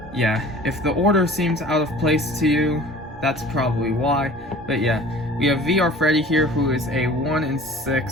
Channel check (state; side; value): normal; both; correlation 0.45